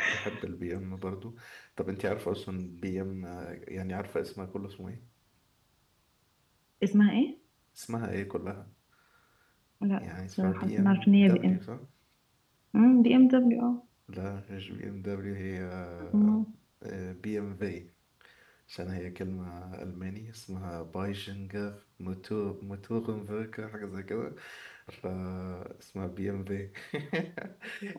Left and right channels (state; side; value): identical; both; correlation 1.00